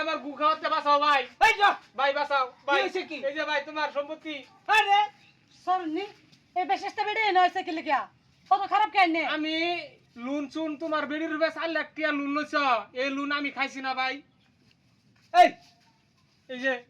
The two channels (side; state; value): both; identical; correlation 1.00